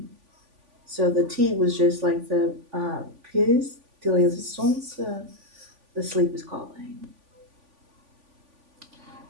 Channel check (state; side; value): late; left; 3.5 ms